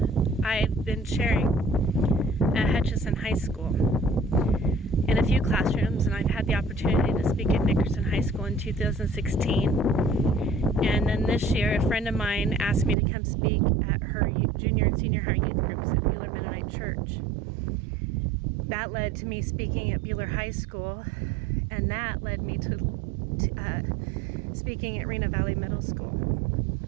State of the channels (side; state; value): left; drops out; at 13.0 s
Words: I've been sharing at Hutchinson High School in a few classrooms, and I've had the opportunity to speak at Nickerson High School in 2016. And then this year, a friend of mine asked me to come speak at her junior and senior high youth groups at Buhler Mennonite Church. That led to me speaking at Buhler High School, and that led me to speaking at Reno Valley Middle School.